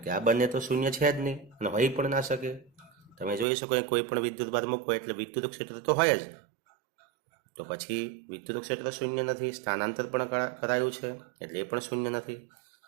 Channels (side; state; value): left; drops out; at 3.5 s